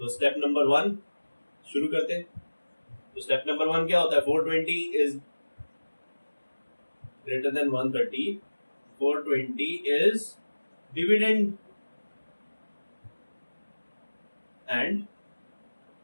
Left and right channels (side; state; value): both; inverted; correlation -1.00